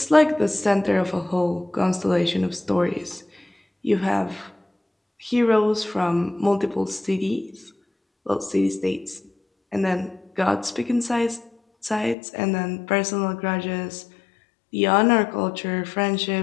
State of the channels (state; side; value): drops out; right; at 12.2 s